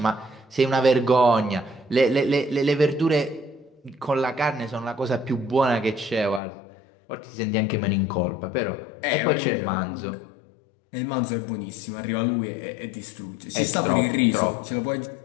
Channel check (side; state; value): right; drops out; at 6.4 s